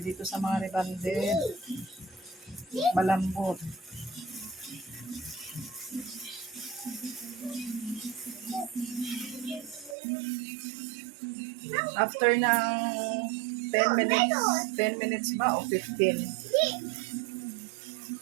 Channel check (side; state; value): left; drops out; at 10.0 s